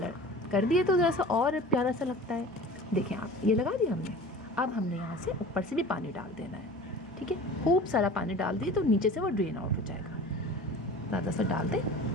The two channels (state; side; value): normal; both; correlation 0.39